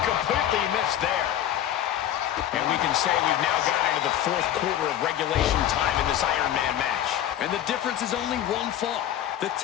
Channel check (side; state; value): right; quieter; 11.6 dB